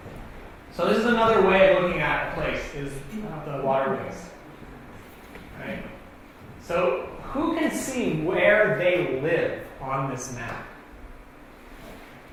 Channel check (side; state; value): both; identical; correlation 1.00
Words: So this is another way of looking at a place, is the waterways. Right? So who can see where they live on this map?